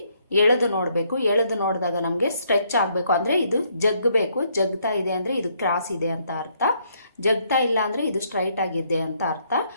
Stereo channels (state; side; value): inverted; both; correlation -0.70